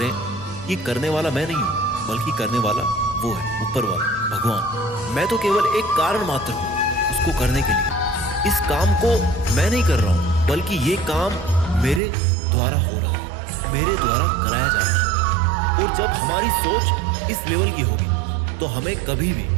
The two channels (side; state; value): left; drops out; at 12.0 s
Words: कि करने वाला मैं नहीं हूं, बल्कि करने वाला वो है, ऊपर वाला भगवान। मैं तो केवल एक कारण मात्र हूं उसको करने के लिए। इस काम को मैं नहीं कर रहा हूं, बल्कि ये काम मेरे द्वारा हो रहा है, मेरे द्वारा कराया जा रहा है। और जब हमारी सोच इस लेवल की होगी तो हमें कभी भी